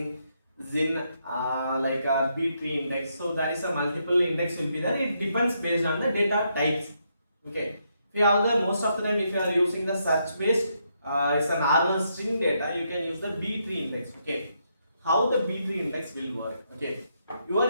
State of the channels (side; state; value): both; inverted; correlation -0.78